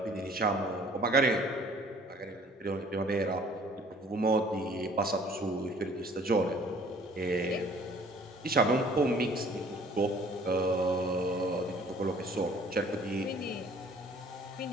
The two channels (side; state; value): both; normal; correlation 0.54